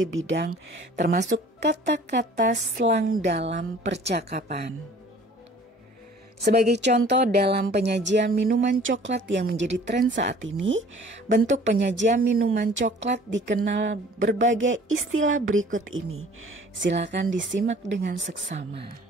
bidang termasuk kata-kata slang dalam percakapan. Sebagai contoh dalam penyajian minuman coklat yang menjadi tren saat ini, bentuk penyajian minuman coklat dikenal berbagai istilah berikut ini. Silakan disimak dengan seksama.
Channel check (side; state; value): both; normal; correlation 0.51